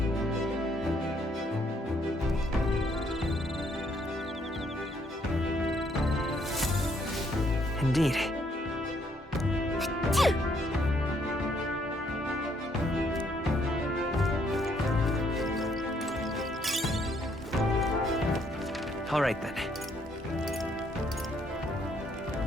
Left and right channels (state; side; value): normal; both; correlation 0.69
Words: Indeed. All right, then.